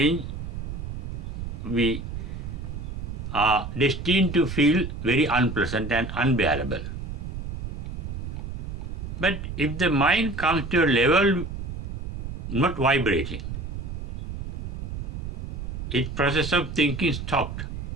we are destined to feel very unpleasant and unbearable. But if the mind comes to a level not vibrating, its process of thinking stopped,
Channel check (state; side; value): noise; right; rumble, 6 dB below the sound